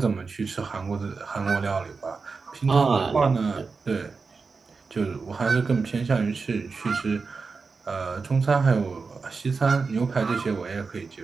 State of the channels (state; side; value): quieter; left; 4.6 dB